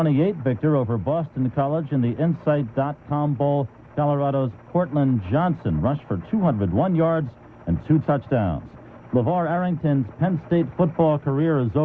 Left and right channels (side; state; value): both; identical; correlation 1.00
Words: victor over Boston College in the Insight.com Bowl. Colorado's Cortland Johnson rushed for 201 yards and 2 touchdowns. LeVar Arrington's Penn State football career is